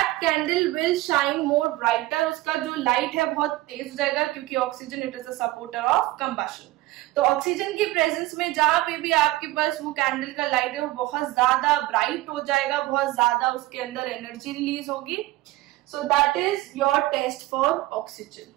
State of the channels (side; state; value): left; quieter; 18.2 dB